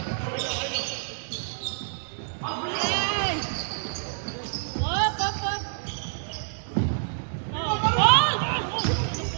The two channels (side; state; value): left; silent; digital silence